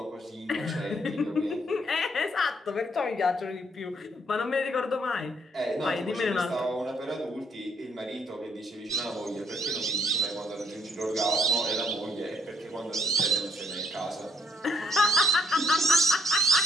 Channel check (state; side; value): normal; both; correlation 0.69